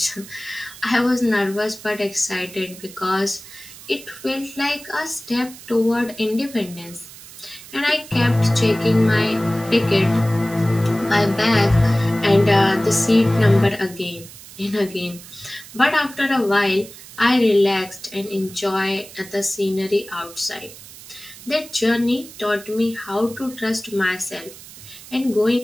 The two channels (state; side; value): noise; right; hiss, 17 dB below the sound